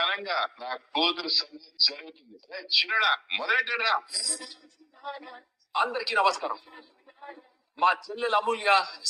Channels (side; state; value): both; identical; correlation 1.00